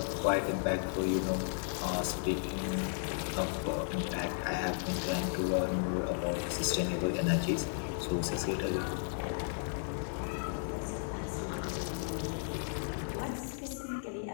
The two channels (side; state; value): right; silent; digital silence